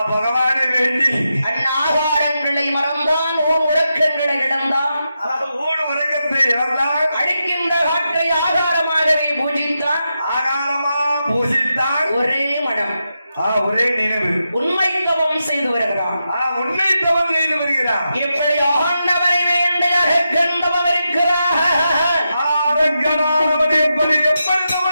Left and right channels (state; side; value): inverted; both; correlation -0.87